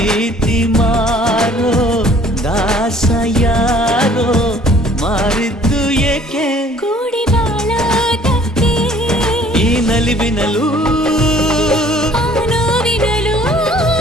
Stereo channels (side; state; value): both; normal; correlation 0.55